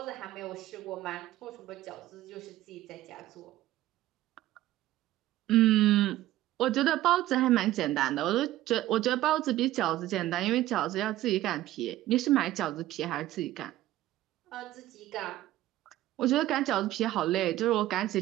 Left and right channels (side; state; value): left; quieter; 14.9 dB